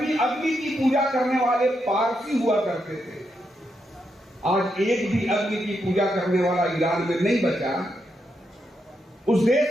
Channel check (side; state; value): both; normal; correlation 0.82